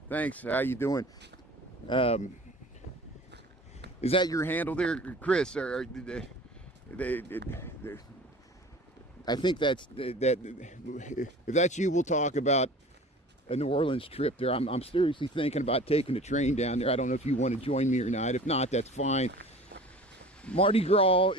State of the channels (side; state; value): both; normal; correlation 0.42